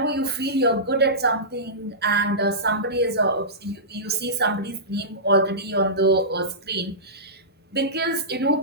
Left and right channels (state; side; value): normal; both; correlation -0.18